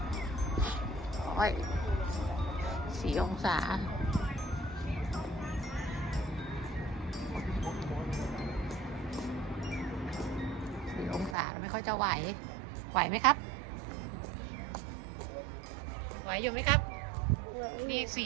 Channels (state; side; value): drops out; left; at 11.4 s